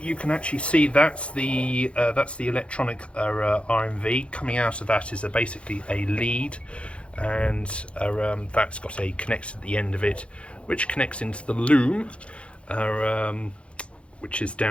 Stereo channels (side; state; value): right; late; 0.060 ms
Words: can actually see that's the electronic RMV. Coming out of that is basically a lead, and that's got a connector at the end of it, which connects into the loom, which is